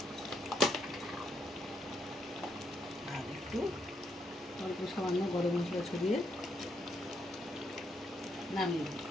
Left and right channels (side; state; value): both; normal; correlation 0.77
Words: আর একটু অল্প সামান্য গরম মশলা ছড়িয়ে নামিয়ে দেবো।